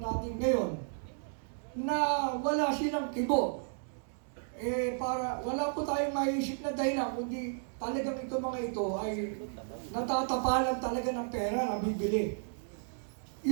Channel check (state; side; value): silent; left; digital silence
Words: ngayon na wala silang kibo. Wala po tayong maisip na dahilan kundi talagang itong mga ito ay natatapalan talaga ng pera na bibili.